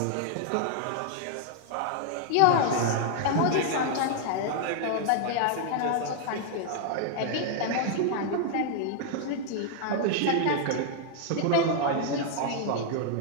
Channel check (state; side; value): different; both; correlation 0.00